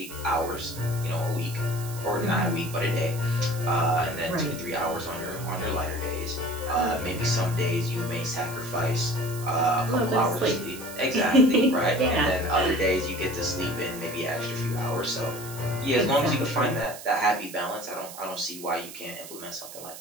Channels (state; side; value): noise; right; hiss, 13 dB below the sound